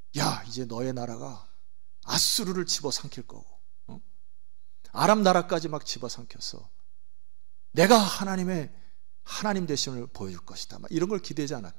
야, 이제 너의 나라가 아수르를 집어삼킬 거고, 아람 나라까지 막 집어삼켜서 내가 하나님 되심을 보여줄 것이다. 막 이런 걸 기대하지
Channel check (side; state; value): left; silent; digital silence